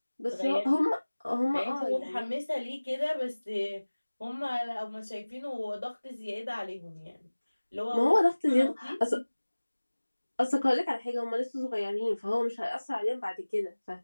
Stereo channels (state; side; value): inverted; both; correlation -1.00